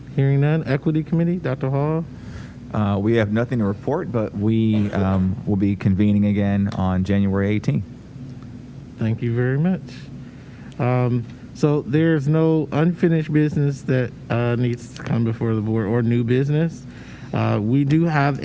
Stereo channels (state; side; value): identical; both; correlation 1.00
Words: Hearing none. Equity Committee, Dr. Hall? We have nothing to report, but we will be convening again on January 18th. Thank you very much. So there's no unfinished business that needs to come before the board or new business. We do have